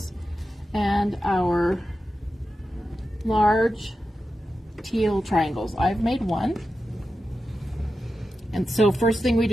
and our large teal triangles. I've made one. And so first thing we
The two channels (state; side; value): normal; both; correlation 0.91